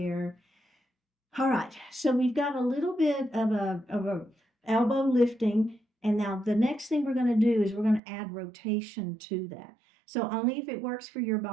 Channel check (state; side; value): drops out; left; at 8.0 s